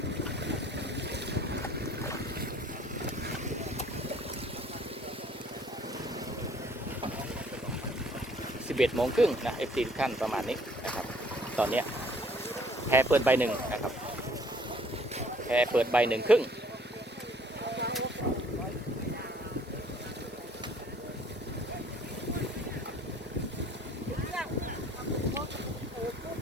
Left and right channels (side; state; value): both; normal; correlation 0.58